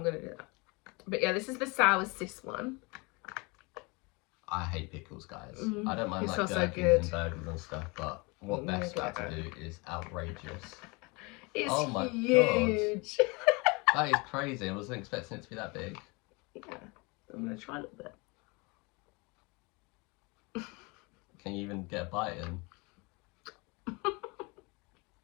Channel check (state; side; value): quieter; right; 27.9 dB